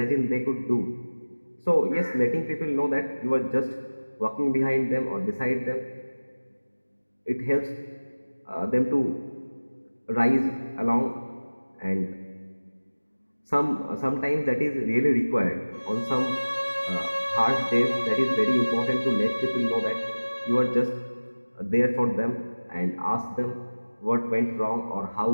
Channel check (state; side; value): inverted; both; correlation -1.00